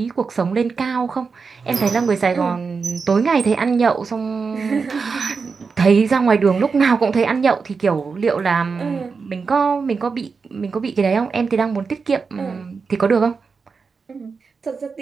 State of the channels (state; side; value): quieter; left; 5.0 dB